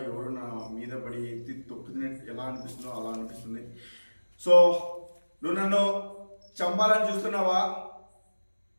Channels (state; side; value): inverted; both; correlation -1.00